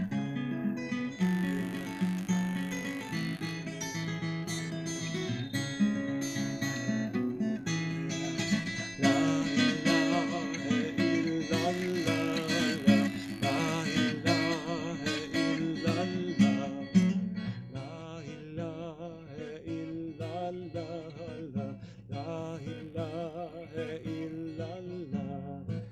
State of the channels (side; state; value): both; identical; correlation 1.00